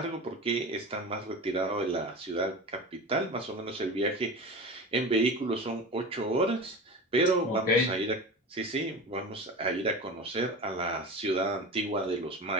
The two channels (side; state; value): both; normal; correlation 0.30